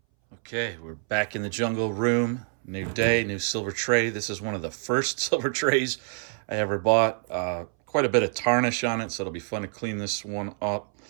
Okay, we're back in the jungle room. New day, new silver tray. This is one of the first silver trays I ever bought. Quite a bit of tarnish on it, so it'll be fun to clean this one up.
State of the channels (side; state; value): left; silent; 60 dB below the other